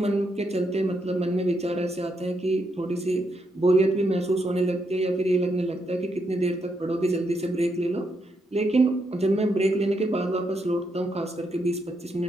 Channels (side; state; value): both; normal; correlation 0.79